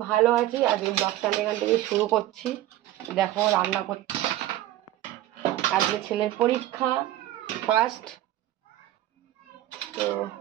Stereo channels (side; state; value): left; quieter; 14.2 dB